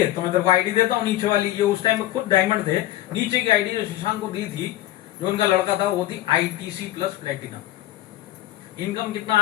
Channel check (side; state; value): right; quieter; 15.1 dB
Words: तो मैं तेरे को आईडी देता हूँ नीचे वाली। ये उस टाइम में खुद डायमंड थे। नीचे की आईडी जो शशांक को दी थी, जो उनका लड़का था, वो थी ITC प्लस प्लेटिनम। इनकम कितना